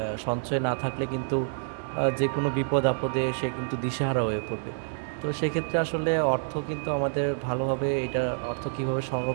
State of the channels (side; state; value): left; silent; digital silence